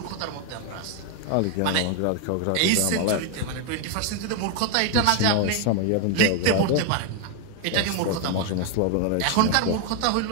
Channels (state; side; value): different; both; correlation 0.01